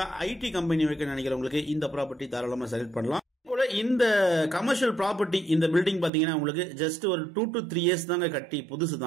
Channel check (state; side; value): drops out; left; at 6.1 s